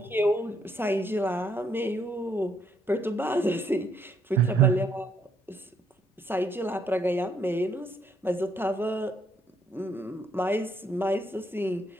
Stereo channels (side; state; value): both; normal; correlation 0.71